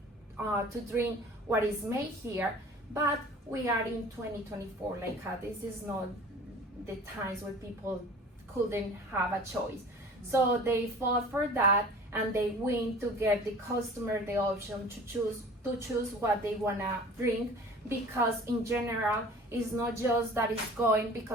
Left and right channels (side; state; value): both; normal; correlation 0.44